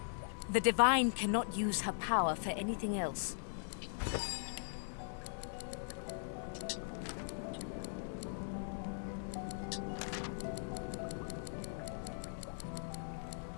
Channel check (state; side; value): silent; right; digital silence